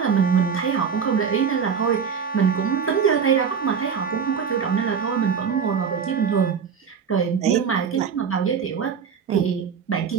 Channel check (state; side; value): quieter; left; 6.6 dB